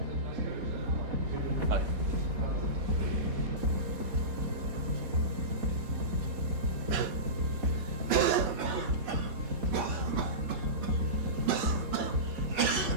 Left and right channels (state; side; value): late; left; 4.2 ms